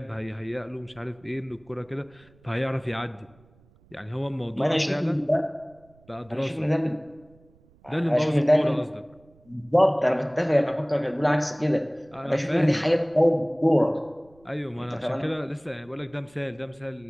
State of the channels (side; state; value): right; noise; rumble, 29 dB below the sound